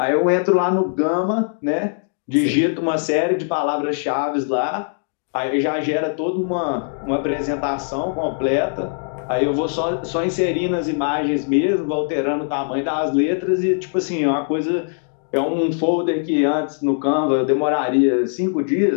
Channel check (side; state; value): right; silent; digital silence